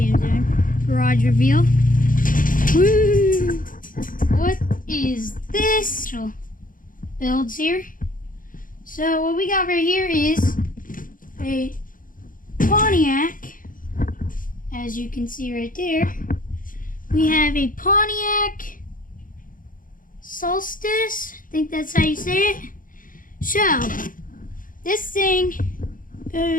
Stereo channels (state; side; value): late; right; 0.40 ms